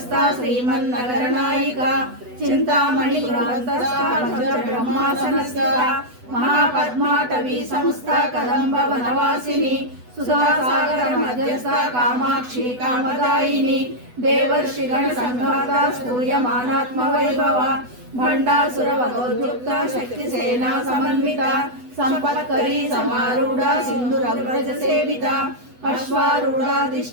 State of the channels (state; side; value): late; left; 8.1 ms